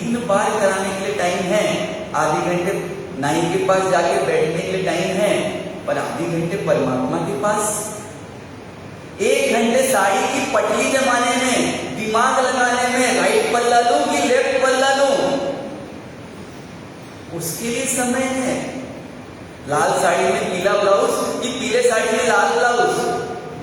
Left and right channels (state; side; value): identical; both; correlation 1.00